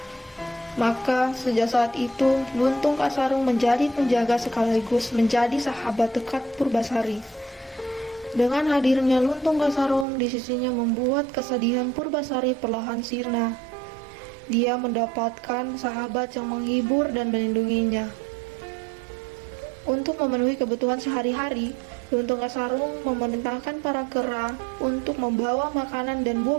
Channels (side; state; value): left; drops out; at 10.1 s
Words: Maka, sejak saat itu, Luntung Kasarung menjadi penjaga sekaligus menjadi sahabat dekat Purbasari. Dengan hadirnya Luntung Kasarung di sisinya membuat kesedihan Purbasari perlahan sirna. Dia mendapatkan sahabat yang menghibur dan melindunginya. Untuk memenuhi kebutuhan sehari-hari, Luntung Kasarung memerintahkan para kera untuk membawa makanan dan